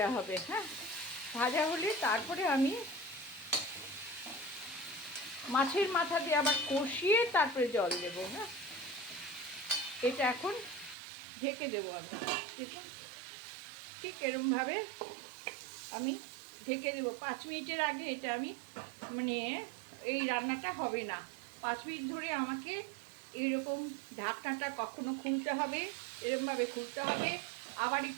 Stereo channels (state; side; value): drops out; left; at 11.0 s